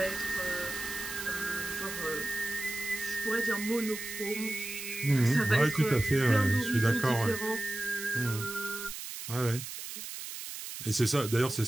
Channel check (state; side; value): noise; right; hiss, 8 dB below the sound